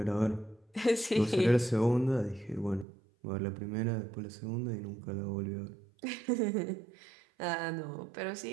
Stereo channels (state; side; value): drops out; left; at 2.9 s